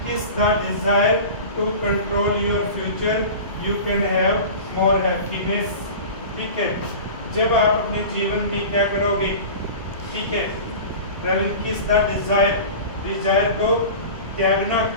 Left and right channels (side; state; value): both; inverted; correlation -0.35